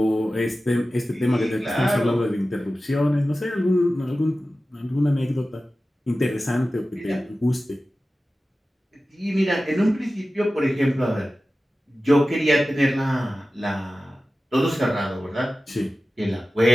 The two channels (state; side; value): normal; both; correlation 0.95